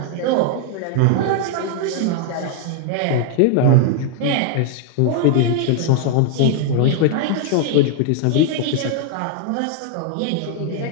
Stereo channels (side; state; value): both; different; correlation 0.00